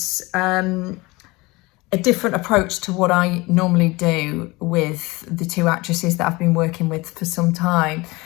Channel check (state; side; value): quieter; right; 22.8 dB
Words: a different approach to what I normally do with the two actresses that I've been working with for some time.